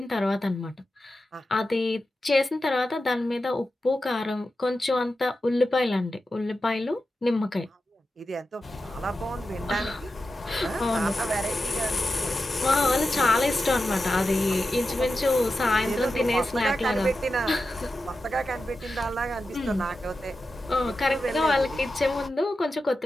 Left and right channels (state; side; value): normal; both; correlation 0.91